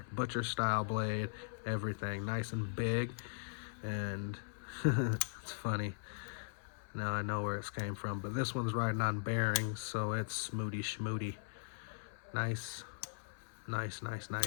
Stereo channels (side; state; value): right; silent; 52 dB below the other